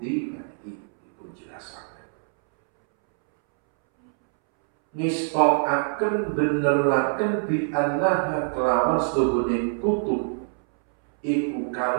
nanti dipun jelasaken. Nistokaken beneraken bi annaha kelawan sedune kutub iku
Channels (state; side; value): silent; left; 62 dB below the other